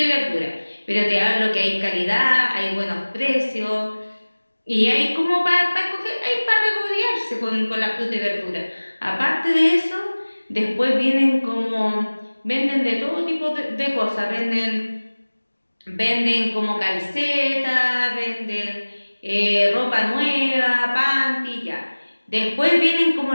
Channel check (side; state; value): both; inverted; correlation -1.00